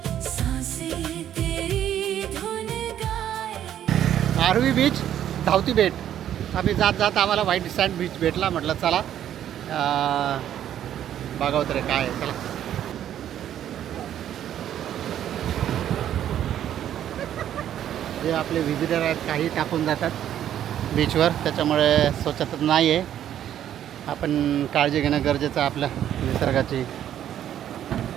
सांसें तेरी धुन गाए. आरवी बीच धावती बेट. आम्ही जात जात आम्हाला व्हाईट सँड बीच भेटला. म्हटलं चला बघावं तरी काय आहे. चला जे आपले व्हिजिटर आहेत काही टाकून जातात बीचवर, त्याच्यामुळे स्वच्छता नाही आहे. आपण काळजी घेणं गरजेचं आहे आपल्या निसर्गाची.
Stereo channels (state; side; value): quieter; left; 10.8 dB